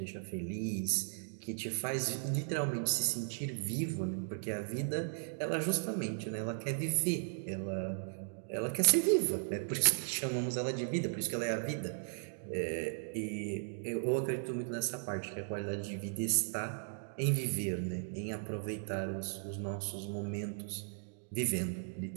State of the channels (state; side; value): silent; left; digital silence